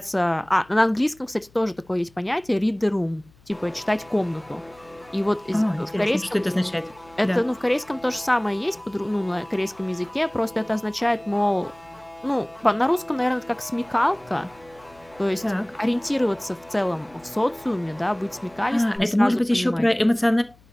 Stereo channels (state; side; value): noise; left; hum, 29 dB below the sound